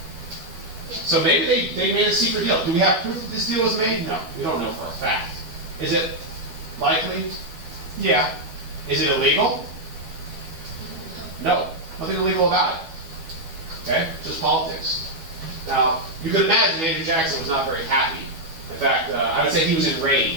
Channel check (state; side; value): late; left; 12 ms